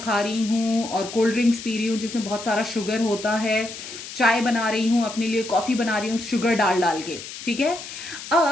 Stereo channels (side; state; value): left; noise; hiss, 11 dB below the sound